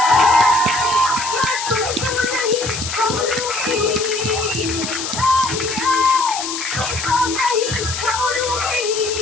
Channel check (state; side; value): noise; left; hiss, 5 dB below the sound